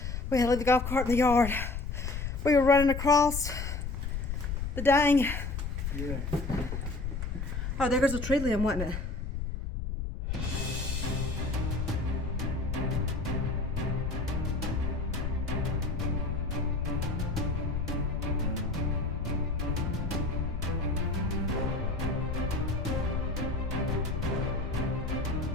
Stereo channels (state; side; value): noise; left; rumble, 3 dB below the sound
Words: we had to leave the golf cart in the yard. We were running across the dang. Yeah. Oh, there goes a tree limb, wasn't it?